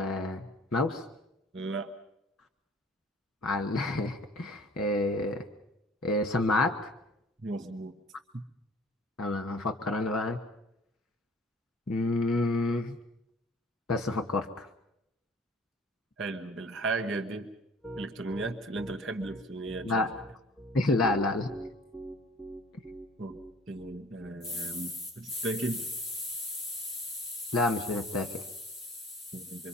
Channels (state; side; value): normal; both; correlation 0.50